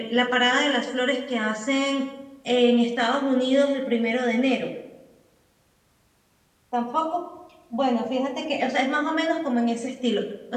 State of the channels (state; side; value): identical; both; correlation 1.00